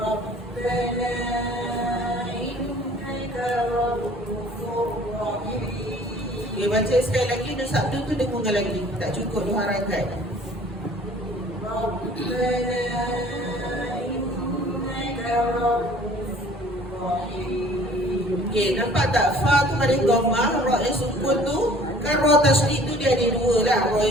Okay, baca sekali lagi. Nur Sabtu tu dengung lagi. Tak cukup 2 harakat. Okay, nampak tak? Fa tu pada dhammah, ra yang sukun tu, kan ra tasydid tu dia ada 2 lah. Ra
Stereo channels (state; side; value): normal; both; correlation 0.52